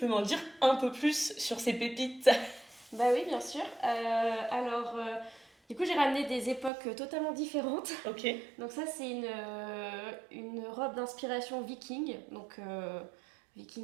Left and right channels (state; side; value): drops out; left; at 6.7 s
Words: m'en dire un peu plus sur ces pépites? Bah oui, bien sûr. Du coup, j'ai ramené des époques totalement différentes. Ok. Donc ça, c'est une robe d'inspiration viking. Donc